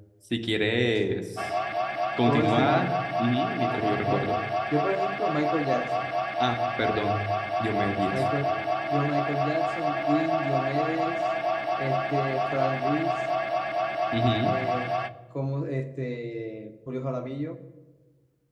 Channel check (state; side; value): identical; both; correlation 1.00